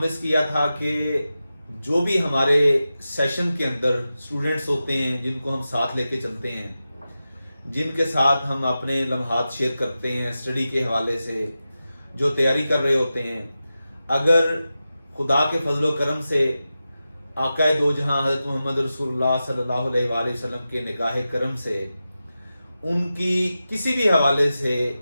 کیا تھا کہ جو بھی ہمارے سیشن کے اندر اسٹوڈنٹس ہوتے ہیں جن کو ہم ساتھ لے کے چلتے ہیں، جن کے ساتھ ہم اپنے لمحات شیئر کرتے ہیں اسٹڈی کے حوالے سے، جو تیاری کر رہے ہوتے ہیں، اگر خدا کے فضل و کرم سے آقا دو جہاں حضرت محمد رسول اللہ صلی اللہ علیہ وآلہ وسلم کے نگاہ کرم سے ان کی کسی بھی حوالے سے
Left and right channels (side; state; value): both; inverted; correlation -0.92